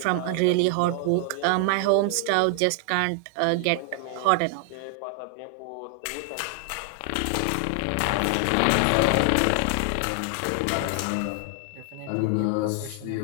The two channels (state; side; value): different; both; correlation 0.00